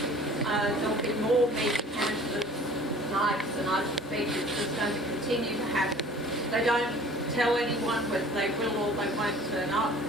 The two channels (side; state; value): both; normal; correlation 0.48